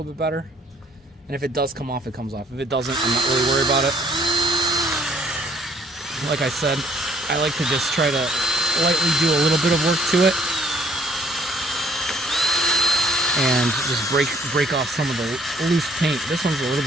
bit better. And if it does come off, it comes off. If it doesn't, I'm not really worried about it. Like I said, I like to just try to lightly do a little bit of work to it and just break off some of the loose paint. This one's a little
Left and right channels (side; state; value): both; normal; correlation 0.62